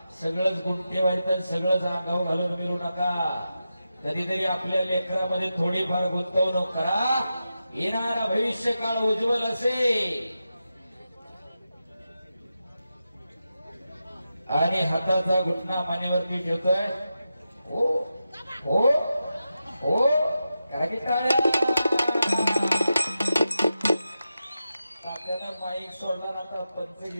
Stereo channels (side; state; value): both; inverted; correlation -0.90